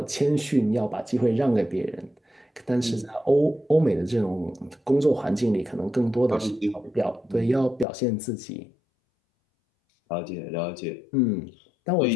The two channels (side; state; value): right; drops out; at 7.9 s